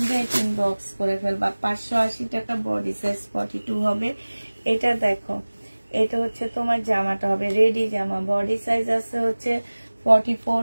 ইনবক্স করে ফেলবা। 580 টাকা, বডি সাইজ 42 হবে। এটা দেখো, এটা হচ্ছে তোমার জামাটা হবে, রেডি জামা। বডি সাইজ আছে হচ্ছে 44,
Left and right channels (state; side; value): inverted; both; correlation -1.00